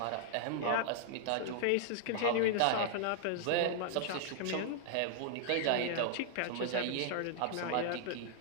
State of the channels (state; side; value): different; both; correlation 0.00